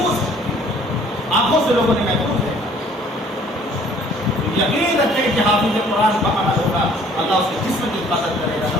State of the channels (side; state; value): both; normal; correlation 0.56